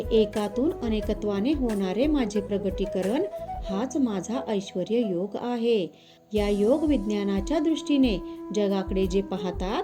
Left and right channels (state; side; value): identical; both; correlation 1.00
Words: एकातून अनेकत्वाने होणारे माझे प्रगटीकरण हाच माझा ऐश्वर्य योग आहे. या योग विज्ञानाच्या दृष्टीने जगाकडे जे पाहतात